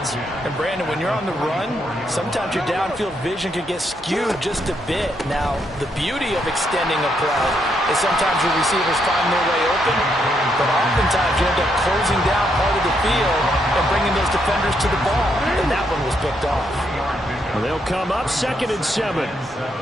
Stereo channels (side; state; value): both; normal; correlation 0.77